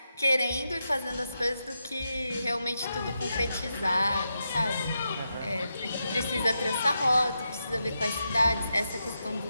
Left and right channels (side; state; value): both; inverted; correlation -0.86